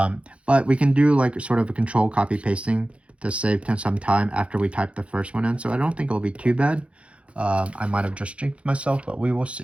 we can do like sort of a control copy pasting to save some time after we type the first one in. So I don't think it'll be too bad. I might have just jinxed myself, but we will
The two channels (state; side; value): late; left; 0.061 ms